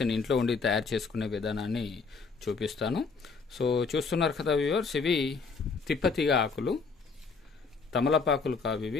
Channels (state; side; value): quieter; right; 4.8 dB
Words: ఇంట్లో ఉండి తయారు చేసుకునే విధానాన్ని చూపిస్తాను. సో చూస్తున్నారు కదా వ్యూవర్స్, ఇవి తిప్పతీగ ఆకులు, తమలపాకులు కావు,